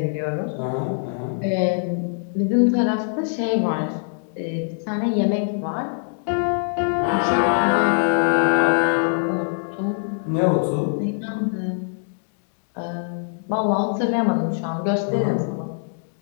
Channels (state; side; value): silent; right; digital silence